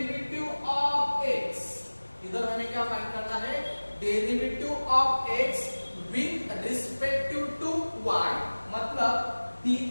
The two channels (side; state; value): both; inverted; correlation -1.00